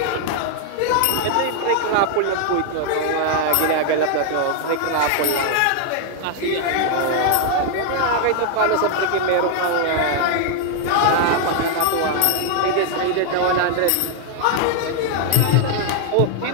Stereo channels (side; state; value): both; different; correlation 0.00